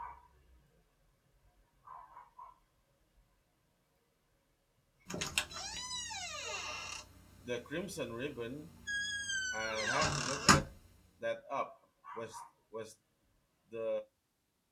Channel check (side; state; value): both; identical; correlation 1.00